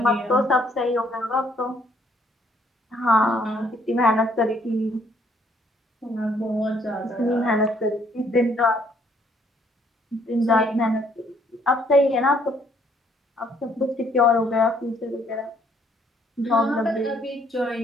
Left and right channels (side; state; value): both; normal; correlation 0.66